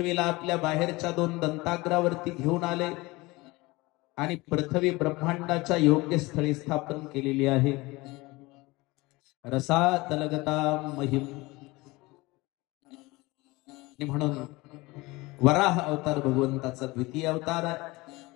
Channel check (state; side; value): quieter; right; 22.2 dB